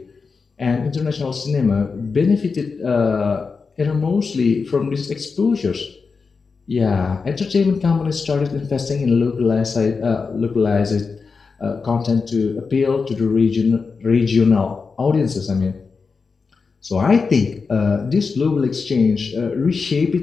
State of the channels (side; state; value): right; quieter; 4.9 dB